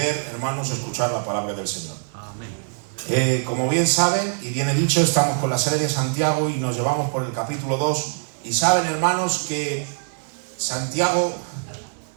hermanos, escuchar la palabra del Señor. Amén. Como bien saben, y bien he dicho, estamos con la serie de Santiago y nos llevamos por el capítulo 2. Y saben, hermanos, que Santiago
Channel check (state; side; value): silent; left; digital silence